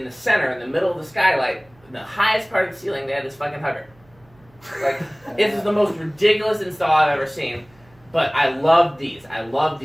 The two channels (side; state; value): right; noise; hum, 30 dB below the sound